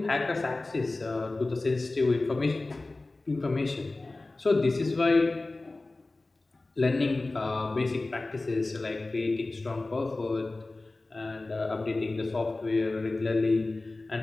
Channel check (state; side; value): quieter; right; 3.1 dB